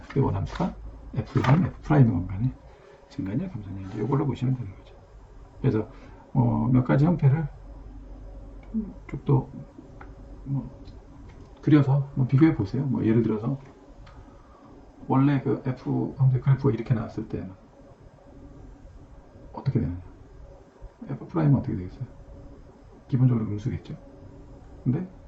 그 원함수가 f랑 f'의 공간에 증가냐 감소냐 이제 이걸로 보시면 되는 거죠. 그래서 몇 가지 형태를 쭉 더 그려서 뭐 비교해 보세요. 뭐 예를 들어서 원래 그 f 형태 그래프가 이렇게 나왔을 때는 어떻게 되느냐? f 프라임은 어떻게 되겠어요? 기본적으로 음수겠죠. 근데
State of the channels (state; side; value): identical; both; correlation 1.00